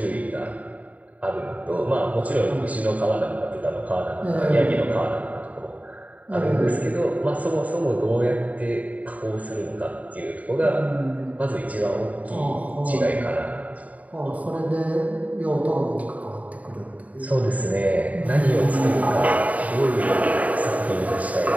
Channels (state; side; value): late; left; 0.071 ms